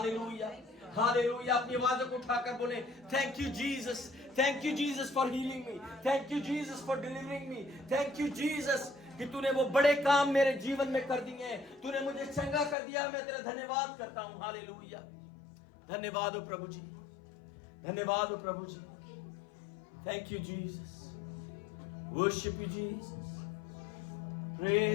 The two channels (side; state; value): right; drops out; at 12.8 s